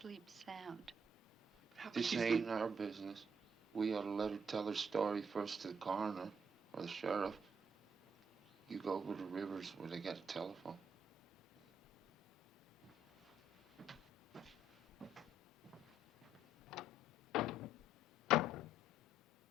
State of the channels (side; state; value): both; normal; correlation 0.72